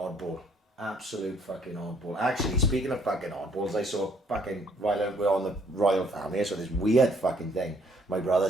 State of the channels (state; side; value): normal; both; correlation 0.64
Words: Absolute fucking oddball. Actually, speaking of fucking oddballs, I saw fucking, while we're on the royal family, I saw this weird fucking thing my brother